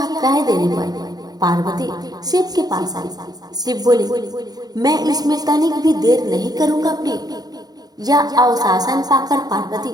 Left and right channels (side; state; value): left; late; 0.19 ms